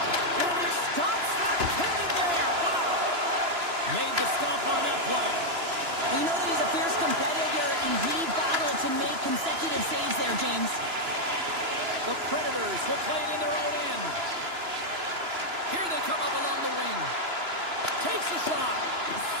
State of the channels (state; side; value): late; left; 2.9 ms